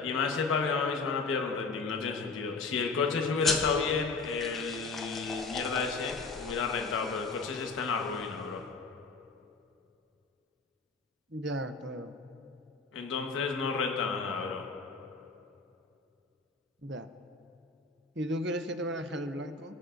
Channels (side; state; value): right; quieter; 4.1 dB